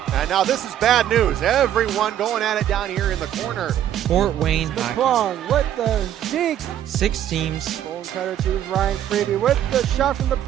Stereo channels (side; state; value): left; quieter; 11.0 dB